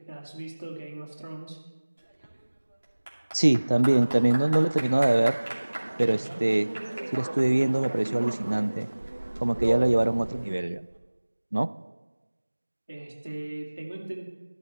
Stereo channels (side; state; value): both; inverted; correlation -1.00